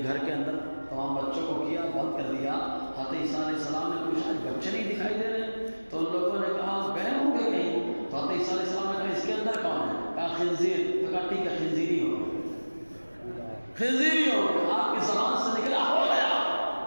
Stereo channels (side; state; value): both; inverted; correlation -1.00